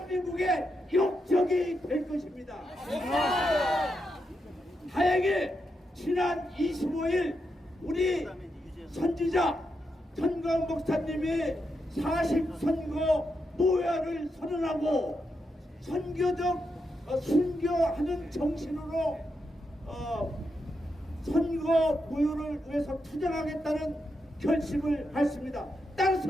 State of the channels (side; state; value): both; normal; correlation 0.84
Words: 역적이 될 것입니다. 다행히 지난 25일 우리 선지자 전광 목사님이 40선거 무효화를 선언하고 순교하는 정신으로 선거 무효를 위해서 투쟁하겠다는 결심을 했습니다.